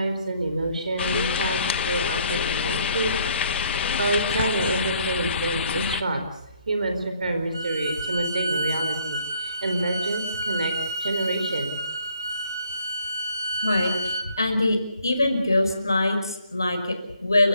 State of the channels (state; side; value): inverted; both; correlation -0.65